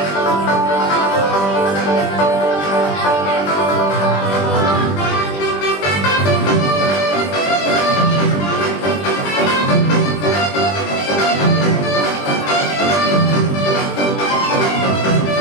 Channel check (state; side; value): late; right; 20 ms